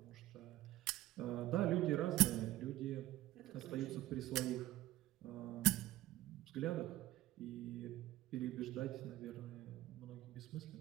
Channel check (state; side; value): quieter; left; 15.7 dB